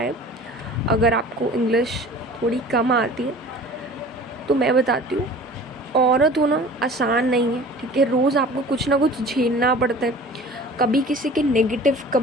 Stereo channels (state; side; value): normal; both; correlation 0.43